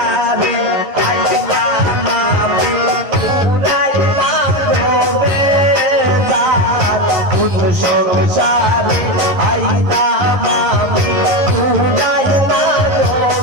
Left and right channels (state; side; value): late; left; 11 ms